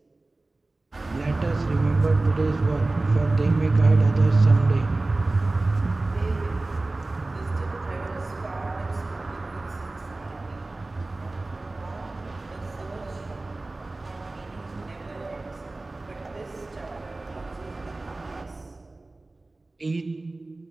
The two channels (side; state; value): left; quieter; 3.1 dB